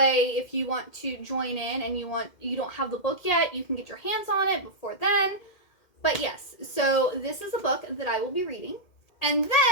if you want to join in and you don't have the book yet, you can get your hands on it before then. But yes, so this is a book that I will be reading. And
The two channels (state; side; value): late; right; 2.1 ms